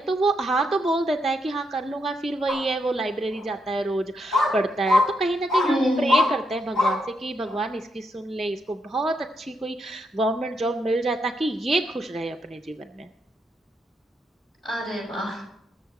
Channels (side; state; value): both; normal; correlation 0.80